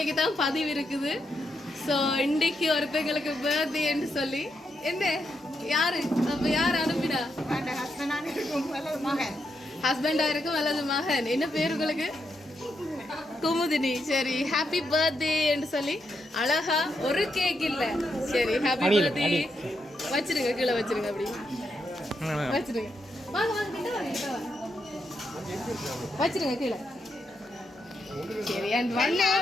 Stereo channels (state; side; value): normal; both; correlation 0.82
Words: தான் பதிவு இருக்குது ஸோ இன்றைக்கு ஒருத்தங்களுக்கு பர்த்டேன்னு சொல்லி என்ன யாரு அப்ப யார் அனுப்பினா ஹஸ்பண்டா இருக்கும் அல்லது மகன் என்ன பேர் உங்களுக்கு குமுதினி சரி ஹாப்பி பர்த்டேன்னு சொல்லி அழகா ஒரு கேக் இல்ல சரி ஹாப்பி பர்த்டே வச்சிருங்க கீழே வச்சிருங்க அப்படி வச்சிருங்க வாங்க வாங்க கிட்ட வாங்க வச்சிருங்க கீழே சரி அண்ட் ஒன்